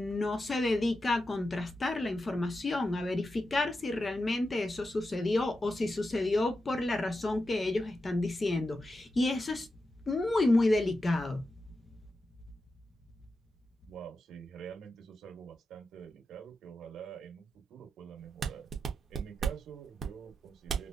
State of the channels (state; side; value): normal; both; correlation 0.90